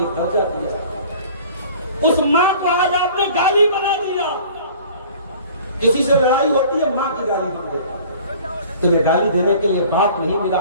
दर्जा दिया, उस माँ को आज आपने गाली बना दिया। किसी से लड़ाई होती है, माँ की गाली बन देता। तुम्हें गाली देने के लिए बाप नहीं मिला,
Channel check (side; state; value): both; inverted; correlation -0.47